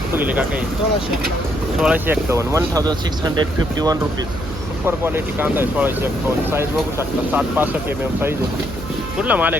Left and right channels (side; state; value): right; noise; hum, 10 dB below the sound